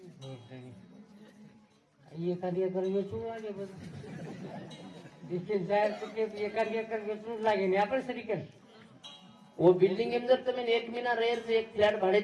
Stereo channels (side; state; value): both; identical; correlation 1.00